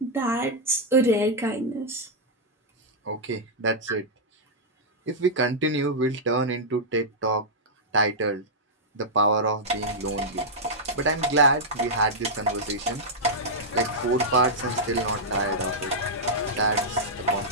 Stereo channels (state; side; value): normal; both; correlation -0.08